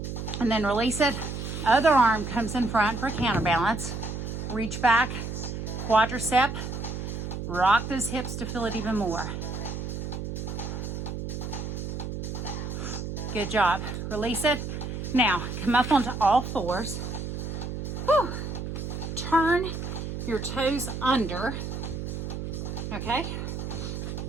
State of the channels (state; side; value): noise; right; hum, 5 dB below the sound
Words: And then release it. Other arm comes in front for counterbalance. Reach back, quadricep. Rock those hips to feel it even more. Good job. Release it. Now, come up onto all fours. Whew. Turn your toes under. Okay?